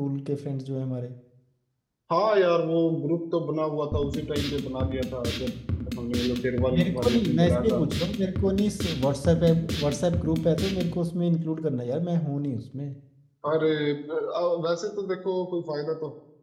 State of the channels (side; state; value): both; identical; correlation 1.00